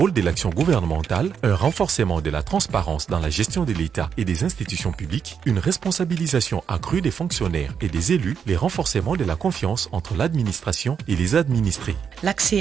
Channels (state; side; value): quieter; left; 7.1 dB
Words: de l'action gouvernementale, un renforcement de la transparence dans la gestion de l'État et des institutions publiques, une responsabilisation accrue des fonctionnaires et des élus, les renforcements de la confiance entre l'administration et les administrés.